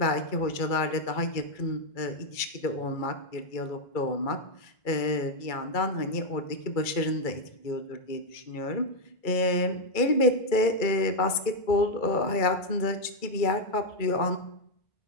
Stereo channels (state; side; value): late; right; 2.3 ms